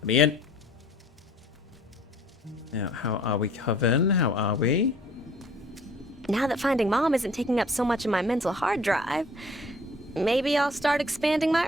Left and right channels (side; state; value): both; normal; correlation 0.54